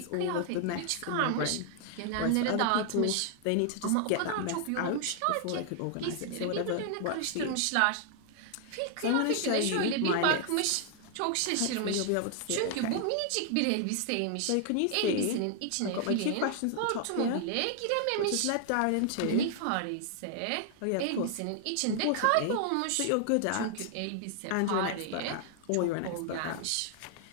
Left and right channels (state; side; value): different; both; correlation 0.00